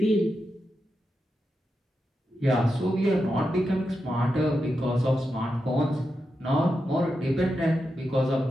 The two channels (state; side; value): normal; both; correlation 0.88